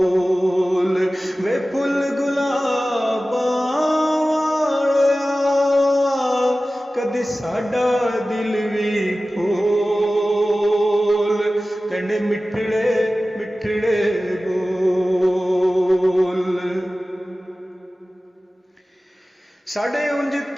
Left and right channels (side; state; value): both; normal; correlation 0.96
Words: वे फुल गुलाबां कदी साडा दिल भी फूल, तेंडे मिठड़े मिठड़े बोल। साडे उंज